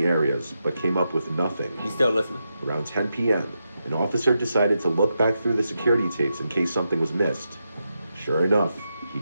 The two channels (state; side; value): inverted; both; correlation -0.86